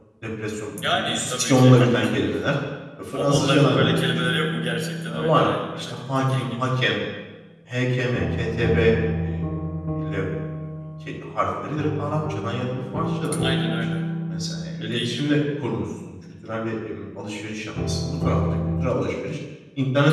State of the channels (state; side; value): identical; both; correlation 1.00